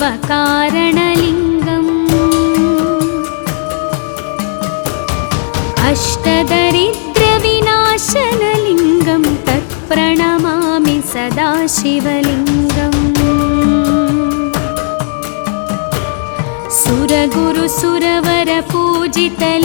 अष्टदरिद्रविनाशनलिङ्गं तत्प्रणमामि सदा शिवलिङ्गम्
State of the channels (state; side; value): silent; right; digital silence